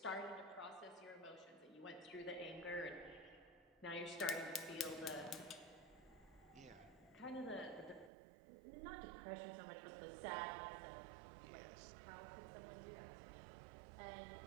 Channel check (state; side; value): drops out; left; at 8.1 s